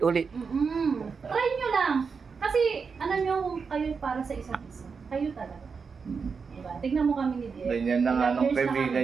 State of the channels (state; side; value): quieter; left; 5.4 dB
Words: Try nyo lang. Kasi, ano nyo, kung kayo para sa isa't isa. Kayo talaga. Diba? Tignan mo kami ni Direk. Ganyan na nga Ilang nung years na kaibigan